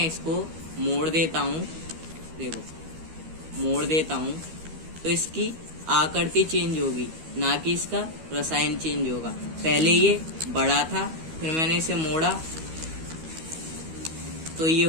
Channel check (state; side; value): late; left; 13 ms